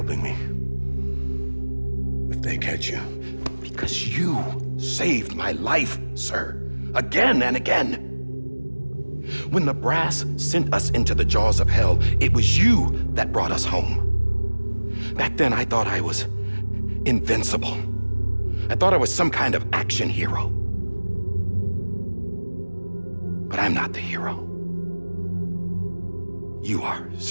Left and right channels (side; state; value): both; inverted; correlation -1.00